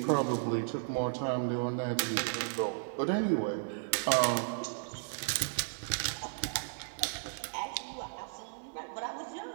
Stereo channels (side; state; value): left; silent; digital silence